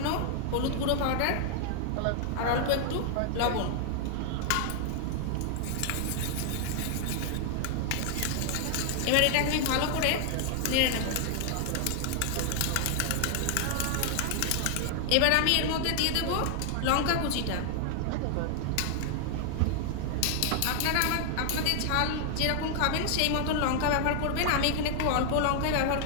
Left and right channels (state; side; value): different; both; correlation 0.00